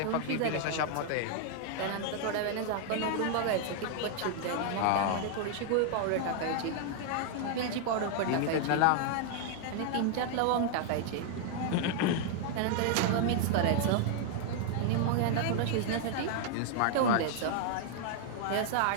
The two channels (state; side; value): different; both; correlation 0.00